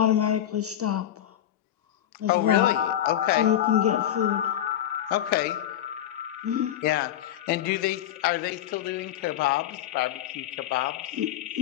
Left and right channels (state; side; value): quieter; right; 11.5 dB